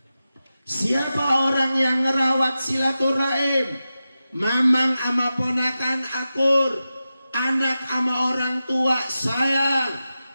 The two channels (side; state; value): both; inverted; correlation -0.93